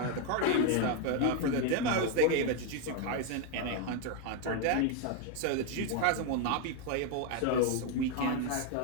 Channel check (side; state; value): both; different; correlation 0.01